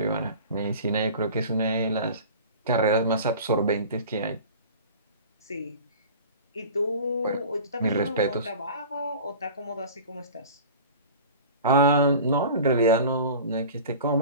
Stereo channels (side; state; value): both; inverted; correlation -0.39